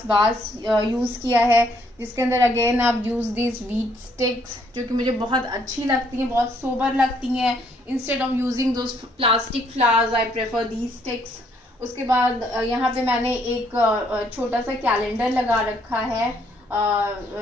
वास यूज़ किया है, जिसके अंदर अगेन आप यूज़ दिस व्हीट स्टिक्स, जो कि मुझे बहुत अच्छी लगती हैं, बहुत सोबर लगती हैं। Instead of using those plastic flowers I prefer these sticks. उसके बाद यहाँ पे मैंने एक छोटा सा कैलेंडर लगा रखा है,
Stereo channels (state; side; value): normal; both; correlation 0.68